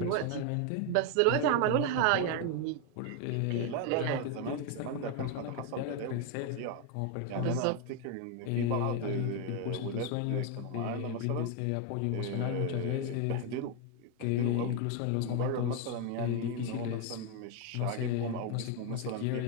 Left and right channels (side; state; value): both; different; correlation 0.01